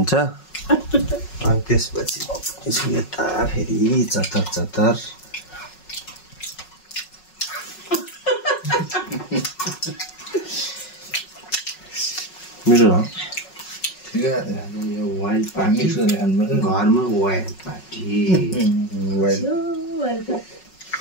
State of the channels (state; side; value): late; right; 5.4 ms